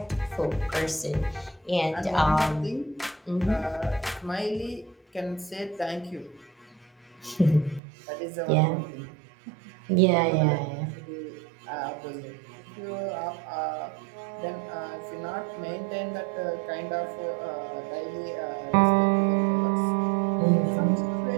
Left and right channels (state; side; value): drops out; left; at 7.8 s